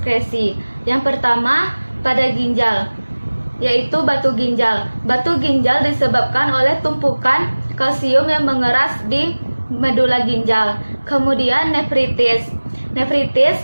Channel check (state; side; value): inverted; both; correlation -1.00